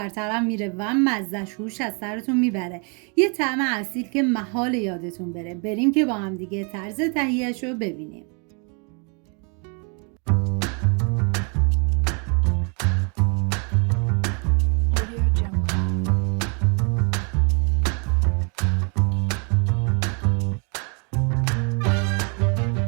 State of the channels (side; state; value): left; quieter; 36.0 dB